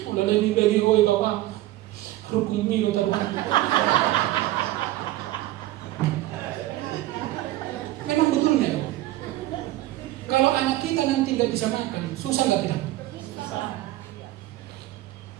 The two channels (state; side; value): quieter; left; 16.3 dB